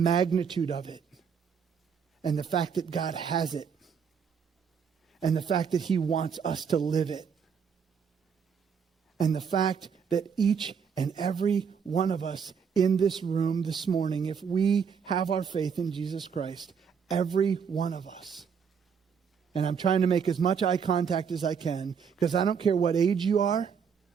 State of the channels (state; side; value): quieter; left; 6.7 dB